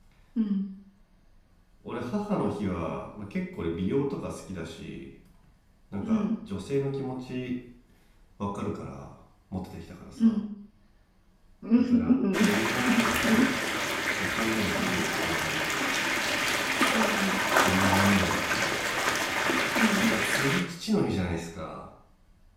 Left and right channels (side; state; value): both; identical; correlation 1.00